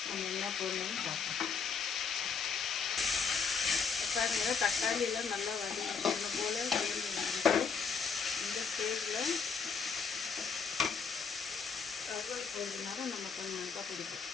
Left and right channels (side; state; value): right; quieter; 5.7 dB